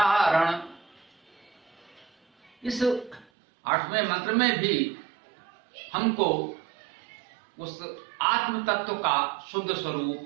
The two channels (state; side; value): drops out; left; at 3.2 s